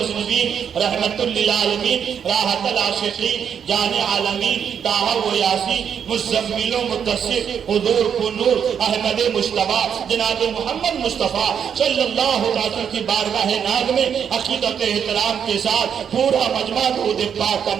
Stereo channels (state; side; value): quieter; left; 7.8 dB